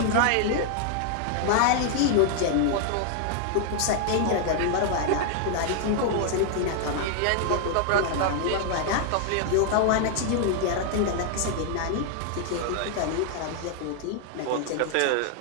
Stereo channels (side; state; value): both; different; correlation 0.00